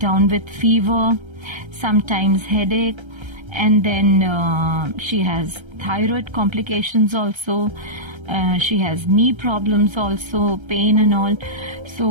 with fever, sometimes headache. And then she has thyroid complications also. She has knee problems also, pain and all.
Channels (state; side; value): late; left; 1.3 ms